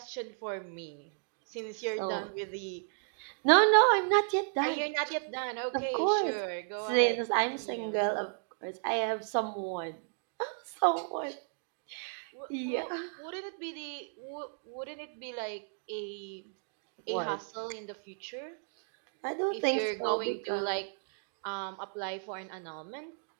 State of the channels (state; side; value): silent; left; digital silence